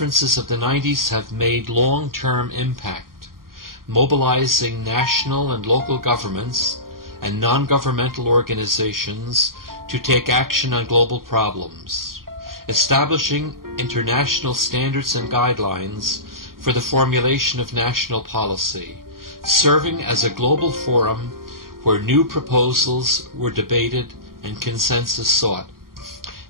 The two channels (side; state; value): left; late; 0.92 ms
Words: of the 90s have made long-term impact, mobilizing national and local governments and non-governmental organizations to take action on global problems, establishing international standards and guidelines for the formulation of national policy, serving as a global forum where new proposals were debated and consensus sought,